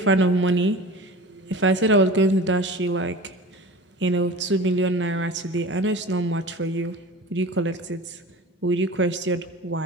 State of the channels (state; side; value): normal; both; correlation 0.37